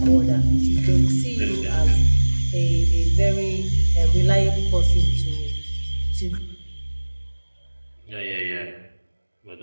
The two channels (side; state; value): both; inverted; correlation -1.00